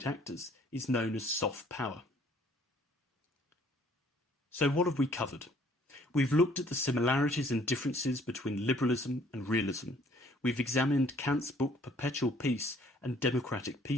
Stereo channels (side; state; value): both; normal; correlation 0.60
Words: actors is known as soft power. So what have we covered? We've looked at the similarities and differences between liberalism and realism. We've examined Kant's book Perpetual Peace and Democratic